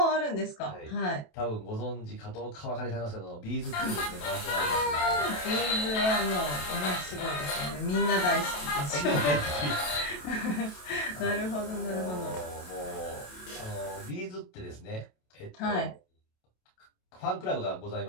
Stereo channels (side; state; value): right; late; 27 ms